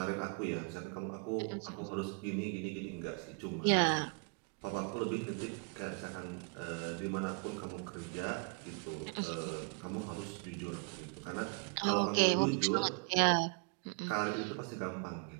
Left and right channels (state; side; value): quieter; left; 36.3 dB